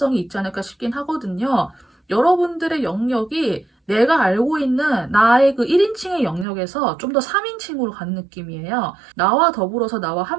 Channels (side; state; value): left; drops out; at 6.5 s